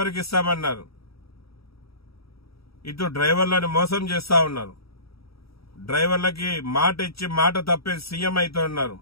ఇస్తామన్నారు. ఇటు డ్రైవర్లను మోసం చేస్తా ఉన్నారు. డ్రైవర్లకి మాట ఇచ్చి మాట తప్పే సీఎం అవుతూ ఉన్నారు.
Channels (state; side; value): late; right; 0.76 ms